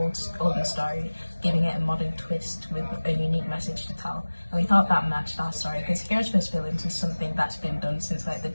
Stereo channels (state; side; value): inverted; both; correlation -1.00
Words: older story, giving it a modern twist with a unique message to tell. And we thought that matched our story because Heroes vs Villains is something that's been done since like the